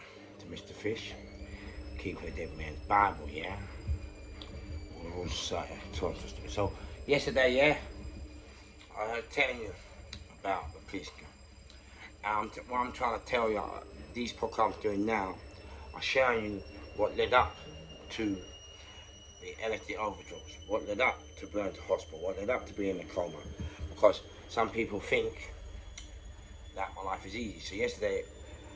to Mr. Fish, keeping a dead man's Bible, yeah? All society. So, yesterday, yeah, I was telling you about the police gun. What I'm trying to tell you, these podcasts I'm doing now, are showing you what led up to the LSD overdose, what led up to going to hospital, what led up to being in a coma. Because some people think that my life is easy. So yesterday,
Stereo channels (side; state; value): both; identical; correlation 1.00